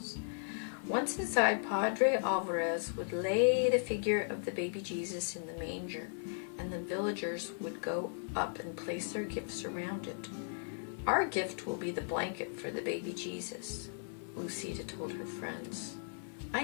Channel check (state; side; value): silent; right; 53 dB below the other